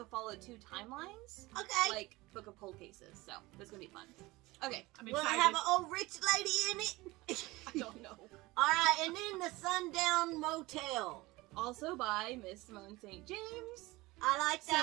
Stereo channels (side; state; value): left; quieter; 20.9 dB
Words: follow 2 timelines, Okay. like Book of Cold Cases. So it's going to be fun. Okay. I'm Will it excited. have an old rich lady in it? I don't know. All right. And then the Sundown Motel. Also by Miss Simone St. James. I like